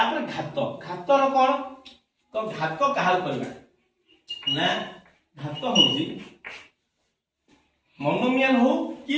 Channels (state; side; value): identical; both; correlation 1.00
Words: घात रो कोन तो घात काहा करबा ना घात होजी मोनोमियल हो कि